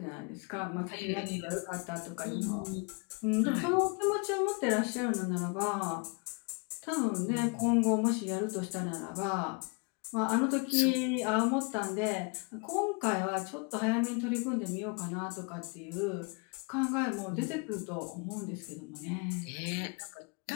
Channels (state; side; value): quieter; right; 32.9 dB